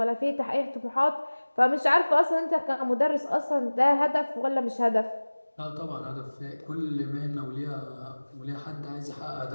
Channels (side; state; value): both; inverted; correlation -1.00